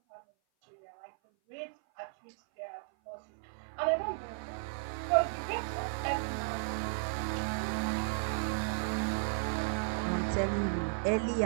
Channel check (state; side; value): silent; left; 55 dB below the other